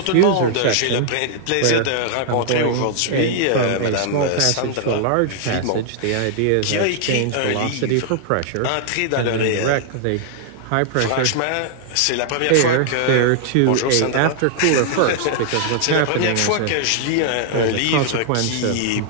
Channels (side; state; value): both; different; correlation -0.01